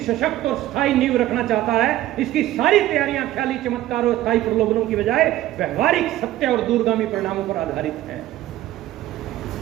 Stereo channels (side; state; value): left; quieter; 14.6 dB